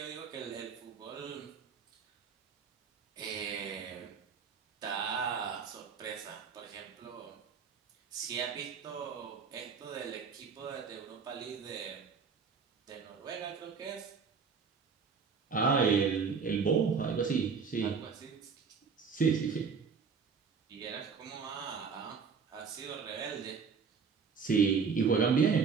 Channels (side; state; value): left; quieter; 5.7 dB